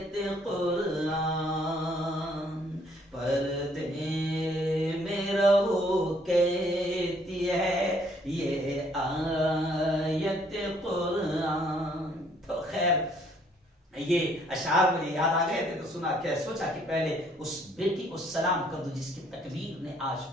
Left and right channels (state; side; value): normal; both; correlation 0.64